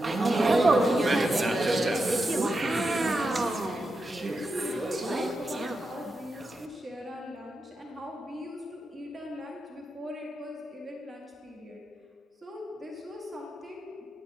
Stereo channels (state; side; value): normal; both; correlation 0.87